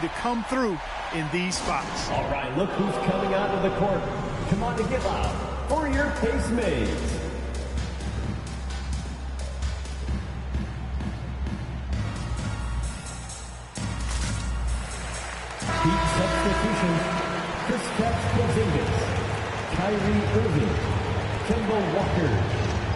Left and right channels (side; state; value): both; identical; correlation 1.00